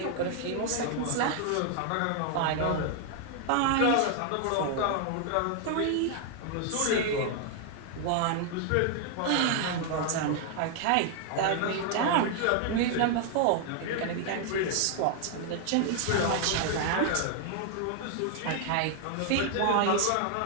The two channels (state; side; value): different; both; correlation 0.00